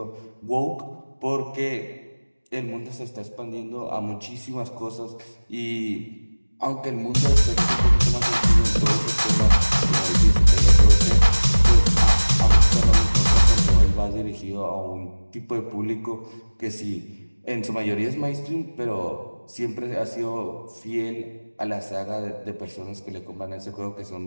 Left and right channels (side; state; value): both; inverted; correlation -1.00